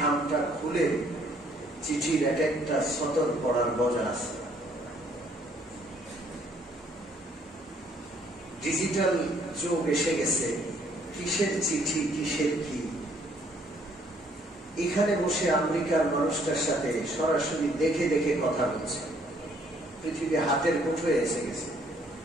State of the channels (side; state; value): both; normal; correlation 0.64